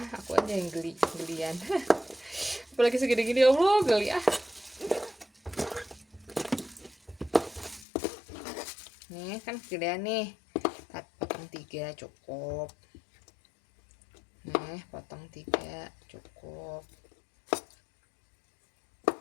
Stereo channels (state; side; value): drops out; right; at 7.9 s